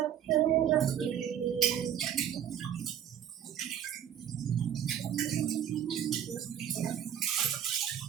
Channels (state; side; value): quieter; left; 9.7 dB